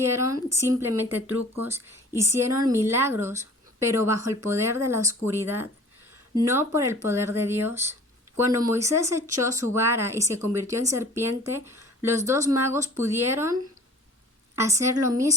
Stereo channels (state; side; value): normal; both; correlation 0.47